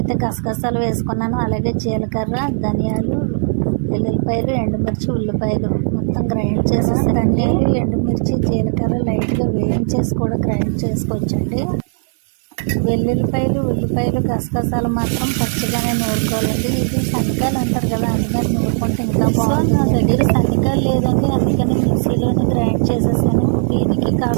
గసగసాలు వేసుకున్నాను, అలాగే జీలకర్ర, ధనియాలు, వెల్లుల్లిపాయలు, ఎండుమిర్చి, ఉల్లిపాయలు మొత్తం గ్రైండ్ చేసేసి, ధనియాలు, ఎండుమిర్చి, జీలకర్ర లైట్గా వేయించేసి కూడా గ్రైండ్ చేసుకోవచ్చండి. వెల్లుల్లిపాయలు, ఉల్లిపాయలు, గసగసాలు మాత్రం పచ్చిగానే నూరుకోవాలండి. ఇది శనగకాయలు అంటారు కదా, అందుకని నూరుకుంటే ఇంకా బాగుంటుంది. నా దగ్గర శనగకాయలు లేదండి, అందుకని మిక్సీలోనే గ్రైండ్ చేసేసాను. దీనికి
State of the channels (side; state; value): left; silent; 57 dB below the other